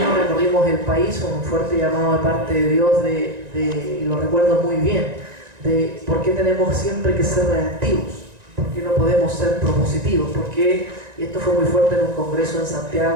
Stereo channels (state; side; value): late; left; 1.9 ms